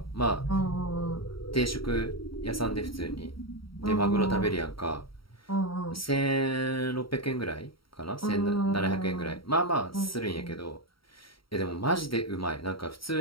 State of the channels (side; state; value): right; late; 0.74 ms